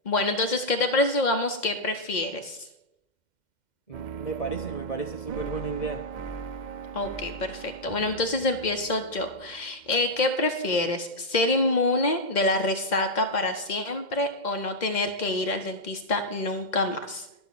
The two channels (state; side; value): late; right; 2.1 ms